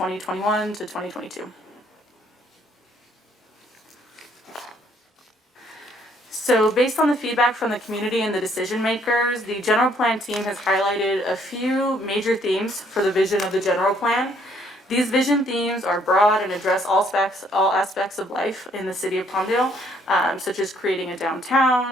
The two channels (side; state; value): both; normal; correlation 0.65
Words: to 2022. So based on the feedback from the community and the decision makers, the general plan team has highlighted a few major themes for the vision of the general plan. These vision themes are broad and address all aspects of life in the city of Palmdale, such as creating a downtown,